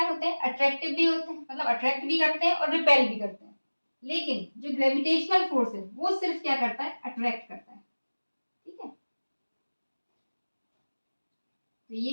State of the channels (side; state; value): both; inverted; correlation -1.00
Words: होते हैं, अट्रैक्टिव भी होते हैं, मतलब अट्रैक्ट भी करते हैं और रिपेल भी करते हैं। लेकिन जो ग्रेविटेशनल फोर्स है वो सिर्फ क्या करता है, अट्रैक्ट करता है। ठीक है, तो ये